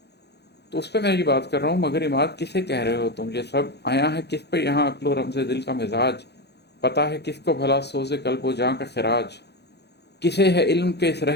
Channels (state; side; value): late; right; 0.49 ms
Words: تو اس پہ میں یہ بات کر رہا ہوں، مگر عماد کسے کہہ رہے ہو تم؟ یہ سب آیا ہے کس پہ یہاں؟ عقل و رمز دل کا مزاج پتہ ہے کس کو بھلا سوز قلب و جاں کا خراج؟ کسے ہے علم کے اس